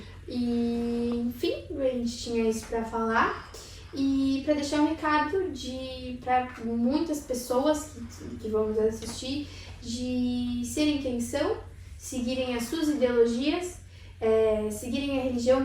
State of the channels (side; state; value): both; identical; correlation 1.00